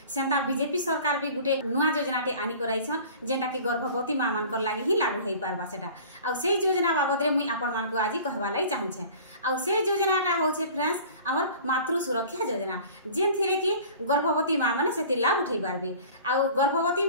सेंता बीजेपी सरकार भी गुटे नुआ योजनाटे आनी कराइछन जेंटा कि गर्भवती मां मान कर लागि ही लागू हेइ पारबा सेटा आ से योजना बाबद रे मुई आपन मान को आज कहबा लाई चाहू छे। आ से योजनाटा होछे फ्रेंड्स हमर मातृ सुरक्षा योजना जेन थिरे कि गर्भवती मां माने सेति लाभ उठै पारबे आ गर्भवती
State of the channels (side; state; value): both; inverted; correlation -0.44